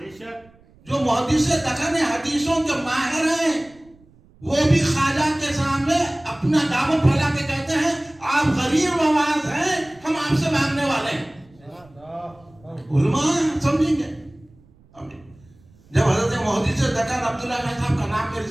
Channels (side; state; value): right; noise; rumble, 28 dB below the sound